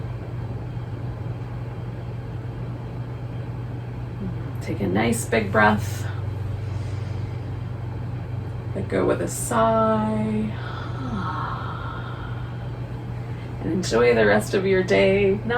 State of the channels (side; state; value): both; identical; correlation 1.00